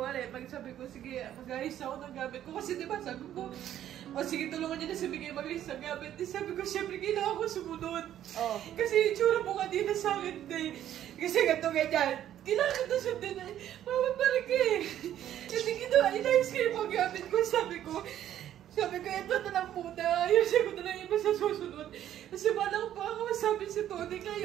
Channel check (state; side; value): quieter; left; 11.4 dB